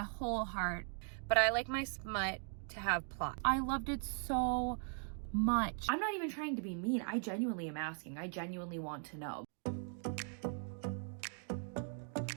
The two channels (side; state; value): left; silent; 51 dB below the other